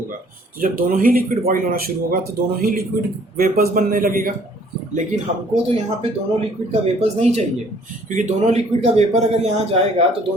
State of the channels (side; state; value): both; normal; correlation 0.58